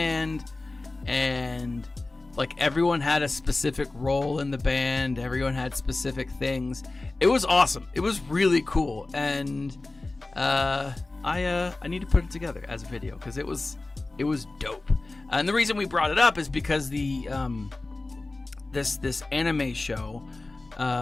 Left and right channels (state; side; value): quieter; right; 3.1 dB